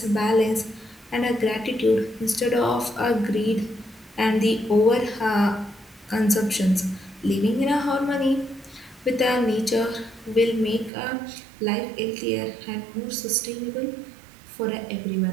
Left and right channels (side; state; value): left; drops out; at 10.9 s